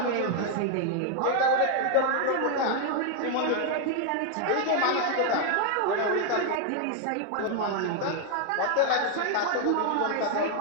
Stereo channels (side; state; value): both; different; correlation 0.00